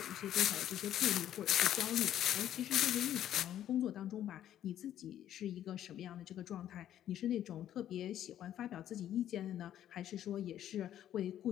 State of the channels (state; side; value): quieter; right; 11.3 dB